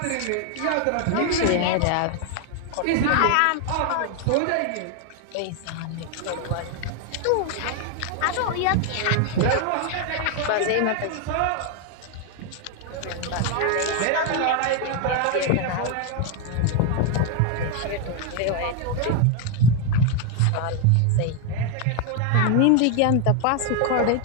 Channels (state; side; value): different; both; correlation 0.01